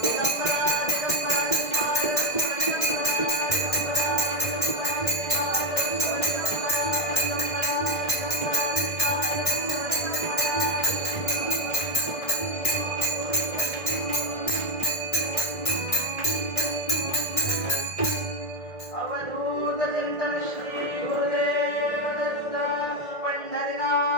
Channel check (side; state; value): right; late; 1.6 ms